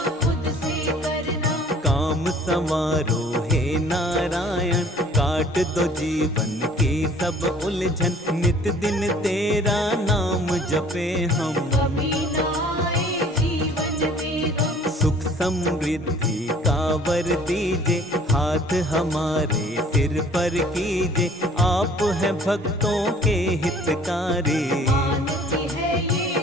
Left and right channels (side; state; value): both; normal; correlation 0.53